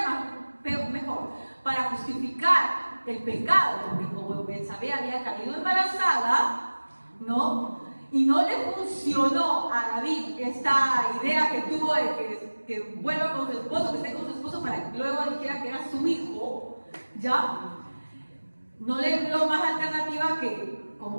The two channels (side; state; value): both; inverted; correlation -1.00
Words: mejor, para justificar el pecado, porque como Betsabé había caído embarazada, ¿no? Y no le funcionó a David esta idea que tuvo de que vuelva con su esposo, que esté con su esposo para que luego dijera que era su hijo, ¿ya? no le vio más alternativa que,